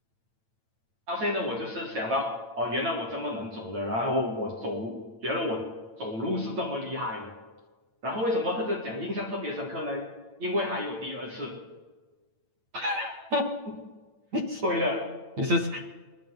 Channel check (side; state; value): left; late; 8.9 ms